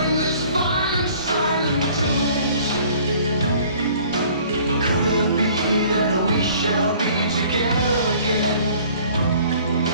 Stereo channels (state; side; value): inverted; both; correlation -0.53